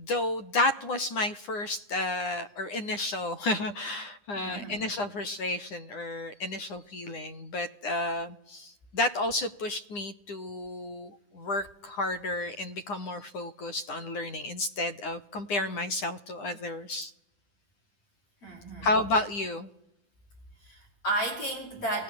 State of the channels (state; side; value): late; right; 9.9 ms